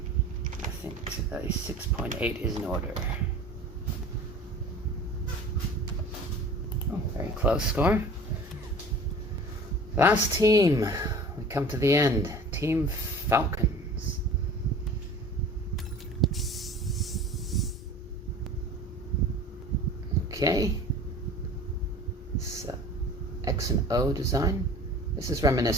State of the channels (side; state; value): both; normal; correlation 0.42